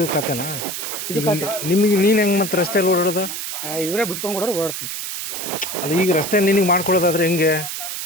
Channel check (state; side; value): noise; right; hiss, 5 dB below the sound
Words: ಕತೆನಾ ಇದು ನಿಮಗೆ ನೀನು ಹೆಂಗೆ ಮತ್ತೆ ರಸ್ತೆಯಲ್ಲಿ ಓಡಾಡೋದು ಇವರೇ ಬಿಟ್ಕೊಂಡು ಕೊಡೋರು ಓಡಾಡ್ತೀವಿ ಅಲ್ಲ ಈಗ ರಸ್ತೆ ನಿನಗೆ ಮಾಡ್ಕೊಡೋದಾದ್ರೆ ಹೆಂಗೆ